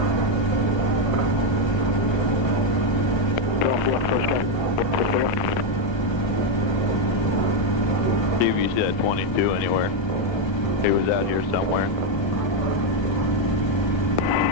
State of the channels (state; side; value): late; right; 1.3 ms